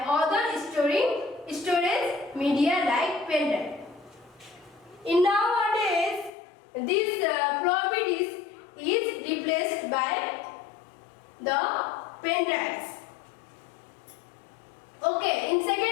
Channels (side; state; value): right; drops out; at 6.3 s